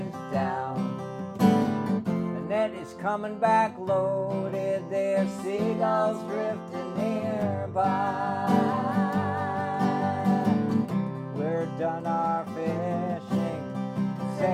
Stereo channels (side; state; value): both; identical; correlation 1.00